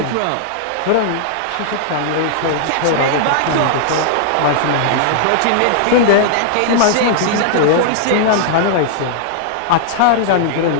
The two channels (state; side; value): different; both; correlation -0.01